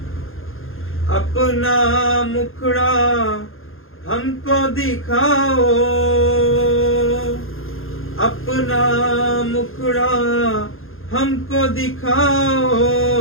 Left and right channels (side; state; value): right; late; 0.60 ms